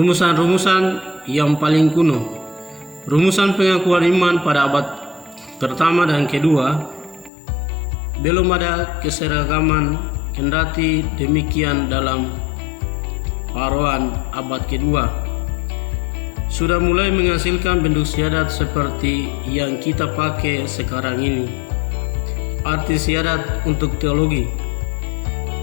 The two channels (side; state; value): right; drops out; at 7.3 s